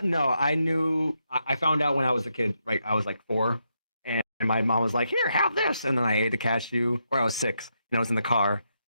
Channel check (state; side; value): inverted; both; correlation -0.82